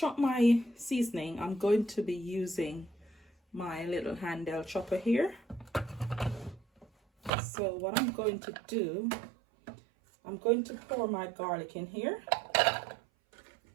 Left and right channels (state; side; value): drops out; left; at 7.3 s